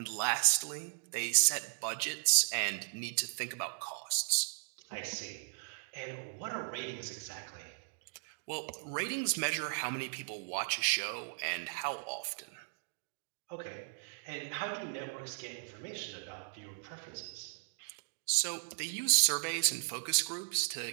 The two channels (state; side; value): silent; left; digital silence